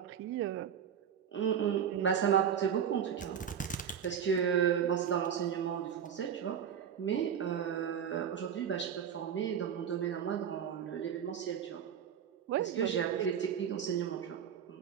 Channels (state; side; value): quieter; left; 8.3 dB